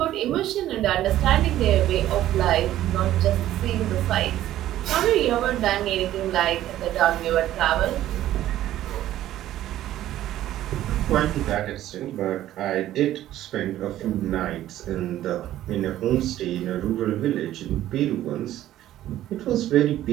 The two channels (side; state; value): left; quieter; 13.4 dB